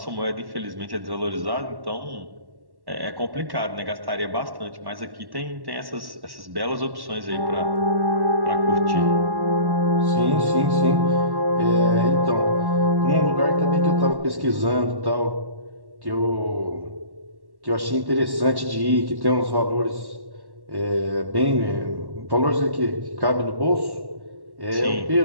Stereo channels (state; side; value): late; left; 1.1 ms